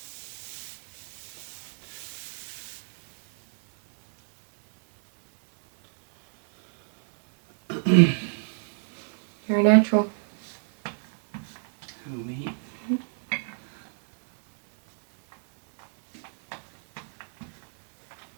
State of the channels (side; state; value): left; silent; digital silence